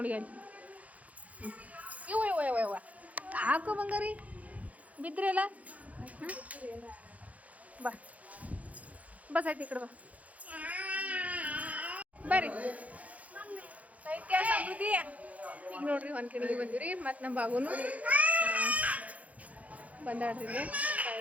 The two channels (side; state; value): left; late; 0.070 ms